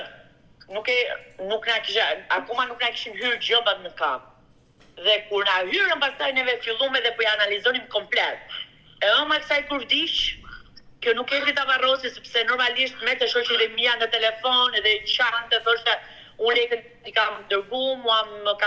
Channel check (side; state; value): both; identical; correlation 1.00